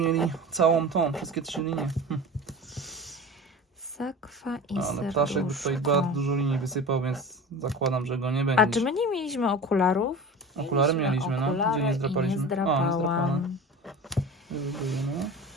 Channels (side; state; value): both; normal; correlation 0.34